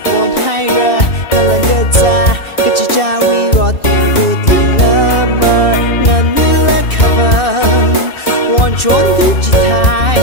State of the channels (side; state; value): right; late; 2.6 ms